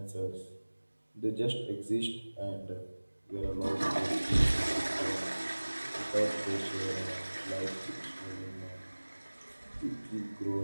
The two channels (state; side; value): inverted; both; correlation -1.00